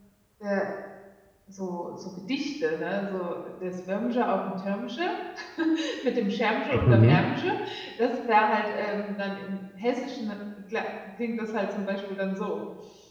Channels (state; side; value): identical; both; correlation 1.00